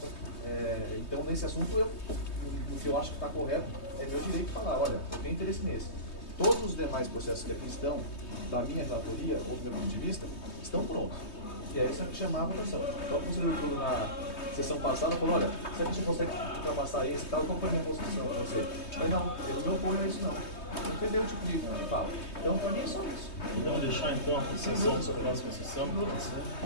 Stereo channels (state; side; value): late; right; 3.2 ms